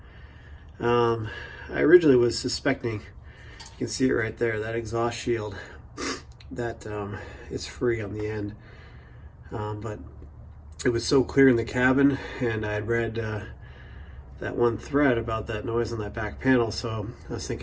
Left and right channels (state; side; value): identical; both; correlation 1.00